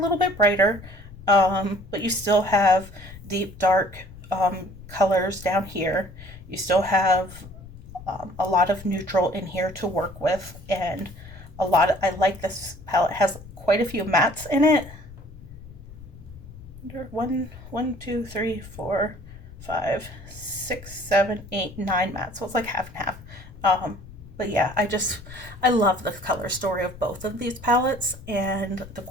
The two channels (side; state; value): left; noise; rumble, 17 dB below the sound